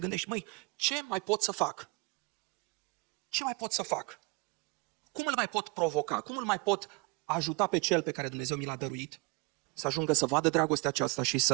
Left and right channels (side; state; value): left; quieter; 28.7 dB